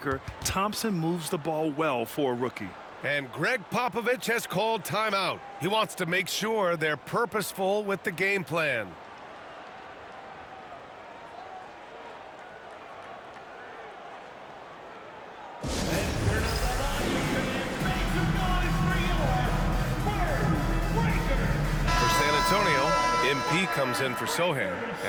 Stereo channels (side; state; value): both; identical; correlation 1.00